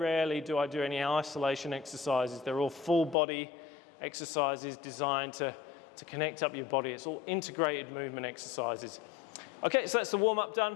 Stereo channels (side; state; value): right; drops out; at 3.2 s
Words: do I do any isolation exercises. They're all full body exercises designed to connect up your body. It's all integrated movement exercises. Okay, so that's the warm-up